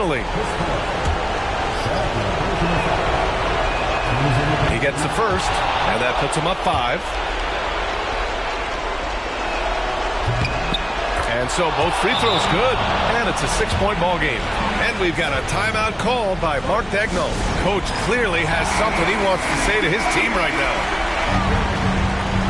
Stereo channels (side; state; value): both; identical; correlation 1.00